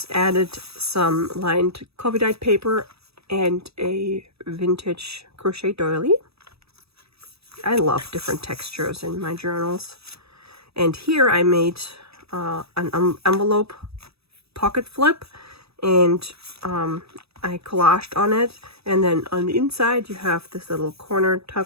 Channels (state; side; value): late; left; 0.78 ms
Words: added some lined coffee dyed paper and a vintage crochet doily. I love different textures in my journals. And here I made an envelope pocket flip, and I collaged on it. And then on the inside you have this little corner